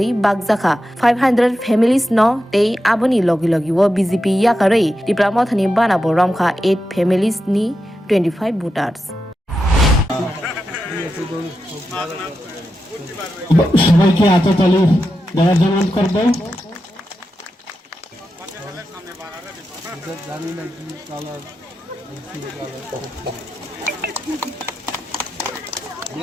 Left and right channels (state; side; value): normal; both; correlation 0.89